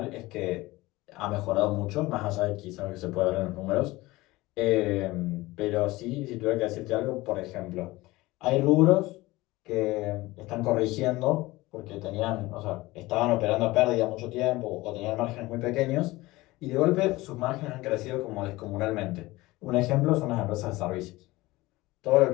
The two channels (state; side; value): quieter; right; 19.9 dB